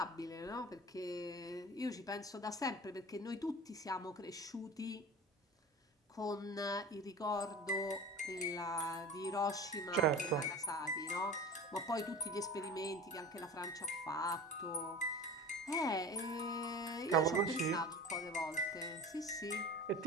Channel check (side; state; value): both; normal; correlation 0.35